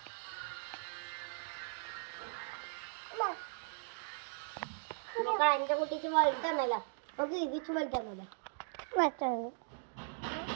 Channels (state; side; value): silent; left; digital silence